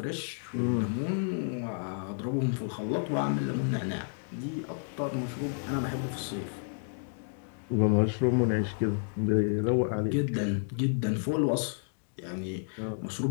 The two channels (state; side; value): silent; right; digital silence